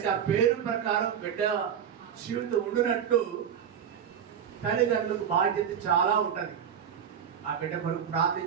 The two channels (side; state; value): left; quieter; 8.4 dB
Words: ఆ పేరు ప్రకారం బిడ్డ జీవితం ఉండినట్టు తల్లిదండ్రులకు బాధ్యత చాలా ఉంటుంది. ఆ బిడ్డ కొరకు ప్రార్థన